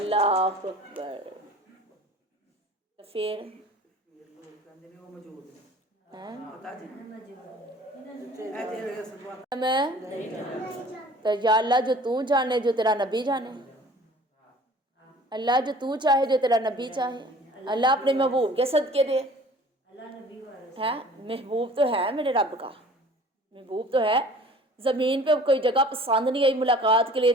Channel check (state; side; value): normal; both; correlation 0.48